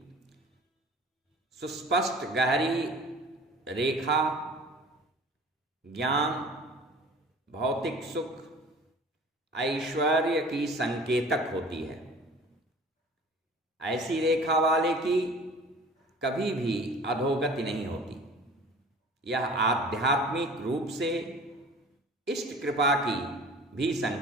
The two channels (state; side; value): normal; both; correlation 0.44